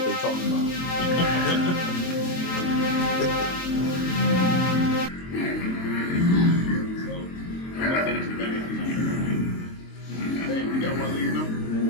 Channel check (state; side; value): late; right; 22 ms